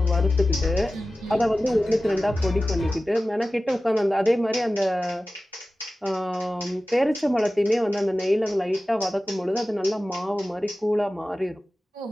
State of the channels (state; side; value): normal; both; correlation 0.95